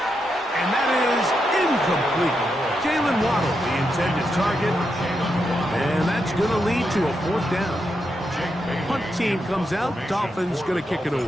And that is incomplete. Jalen Waddle, the intended target. And that's going to lead to a 4th down. Punt team comes out. Dolphins going to kick it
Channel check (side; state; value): both; normal; correlation 0.84